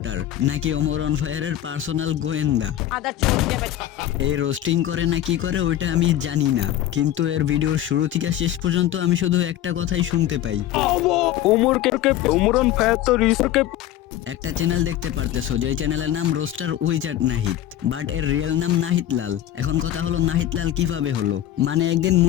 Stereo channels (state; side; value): quieter; right; 12.5 dB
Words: নাকি ওমর অন ফায়ারের পার্সোনাল গোয়েন্দা। এই রোস্টিং করে না কি করে ওইটা আমি জানি না, কিন্তু এর ভিডিওর শুরু থেকে শেষ পর্যন্ত আমি শুধু একটা কথাই শুনতে পাই, ওমর অন ফায়ার তো রিসোর্টকে। একটা চ্যানেল দেখতে পারতেছো যে চ্যানেলের নাম রোস্টার উইজার্ড নাহিদ, বাট এর রিয়েল নাম নাহিদ লাল। এখন কথা হলো নাহিদ লাল কিভাবে হলো? মানে একদিন